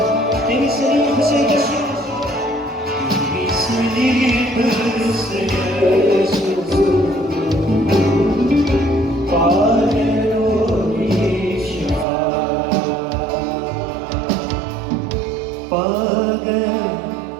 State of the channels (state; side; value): drops out; left; at 12.1 s